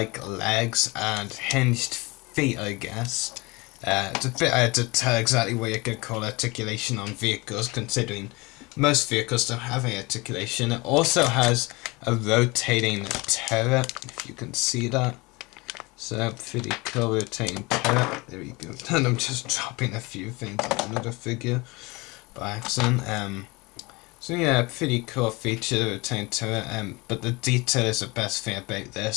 legs and hinged feet, I guess. It's a bit hard to tell exactly what you could call articulation on vehicles, considering most vehicles don't have any articulation. It also has a rotating turret, if you can see that. So, pretty cool rotating turret. There we go. And I'm just dropping a few things on another figure by accident. So yeah, pretty cool feature, the rotating turret. But the detail is the best thing about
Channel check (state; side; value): quieter; right; 24.7 dB